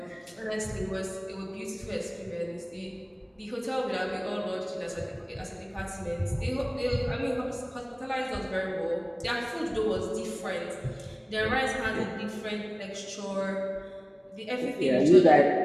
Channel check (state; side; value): identical; both; correlation 1.00